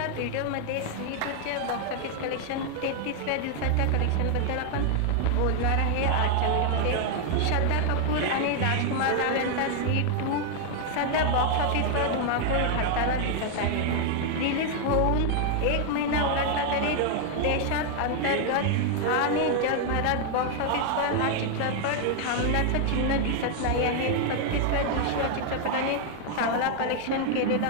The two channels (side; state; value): both; different; correlation 0.00